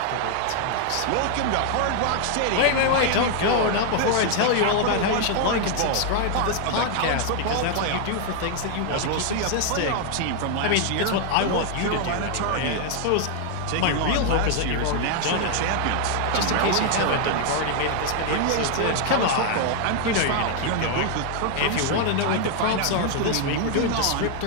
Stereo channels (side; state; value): both; different; correlation 0.00